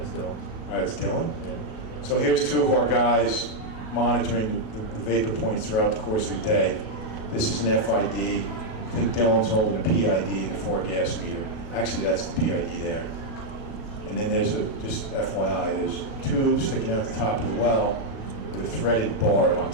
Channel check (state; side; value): late; right; 37 ms